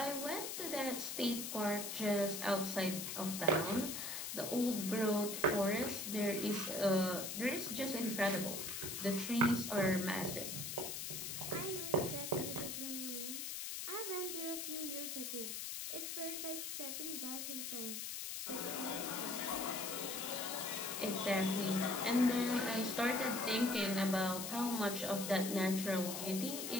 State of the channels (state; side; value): noise; left; hiss, 4 dB below the sound